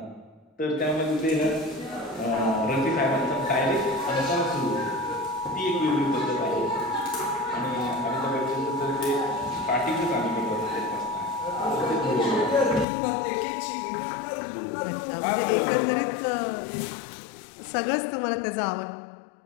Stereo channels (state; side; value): drops out; right; at 12.9 s